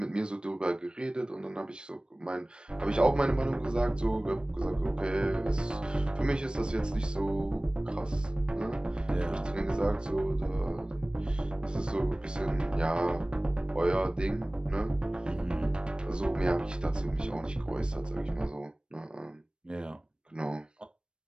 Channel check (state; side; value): late; left; 0.052 ms